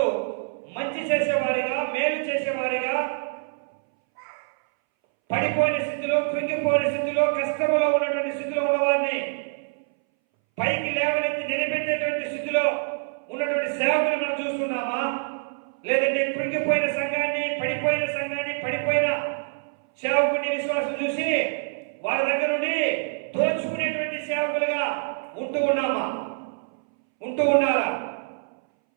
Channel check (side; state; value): left; silent; 61 dB below the other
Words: మంచి చేసేవారిగా మేలు చేసేవారిగా పడిపోయిన స్థితిలో కృంగిపోయిన స్థితిలో కష్టంలో ఉన్నటువంటి స్థితిలో ఉన్నవారిని పైకి లేవనెత్తి నిలబెట్టేటువంటి స్థితిలో ఉన్నటువంటి సేవకులు మనం చూస్తున్నామా? లేదంటే కృంగిపోయిన సంఘాన్ని పడిపోయిన సేవకుని విశ్వాసం చూసి వాళ్ళ దగ్గర నుండి దోచుకునేటువంటి సేవకులుగా ఉంటూ ఉన్నారా